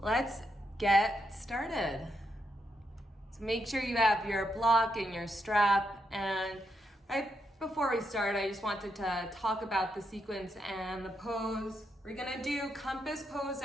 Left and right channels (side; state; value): both; normal; correlation 0.81